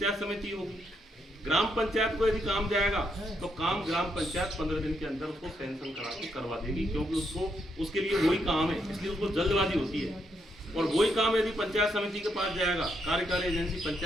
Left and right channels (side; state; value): both; normal; correlation 0.78